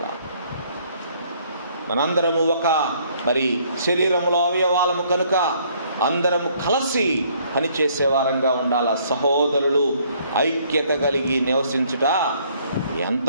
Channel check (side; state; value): both; inverted; correlation -0.63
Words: మనందరము ఒక మరి శరీరంలో అవయవాలము కనుక అందరము కలిసి పనిచేసే వారంగా ఉండాలి. సహోదరులు ఐక్యత కలిగి నివసించుట ఎంత